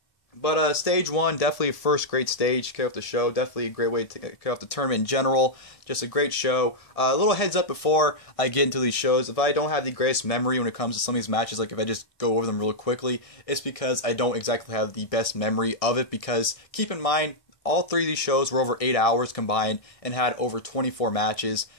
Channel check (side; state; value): right; late; 1.7 ms